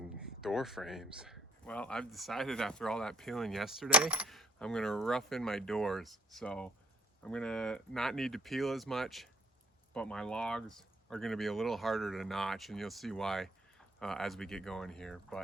door frames. Well, I've decided after all that peeling yesterday, I'm gonna rough in my doors. So I'm gonna not need to peel as much, but my logs are gonna be a little harder to notch, and you'll see why as we get going here.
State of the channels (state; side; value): normal; both; correlation 0.61